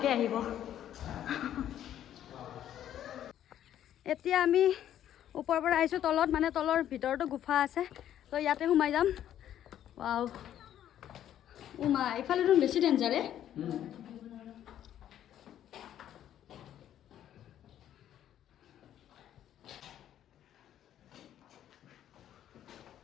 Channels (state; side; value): quieter; right; 11.1 dB